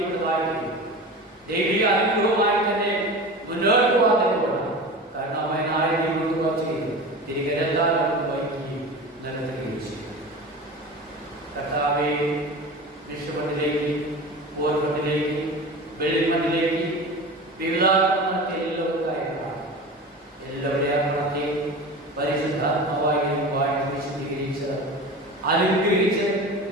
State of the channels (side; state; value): both; normal; correlation 0.32